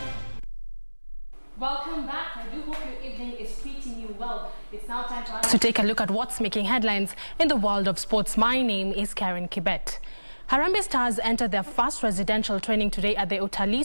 Welcome back. I do hope your evening is treating you well. It's now time for us to take a look at what's making headlines in the world of sports. My name is Karen Kibet. Harambee Stars entered their first residential training today at the Utalii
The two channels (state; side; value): inverted; both; correlation -1.00